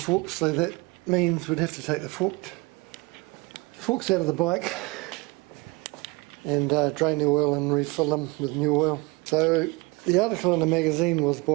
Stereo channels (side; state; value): left; quieter; 25.2 dB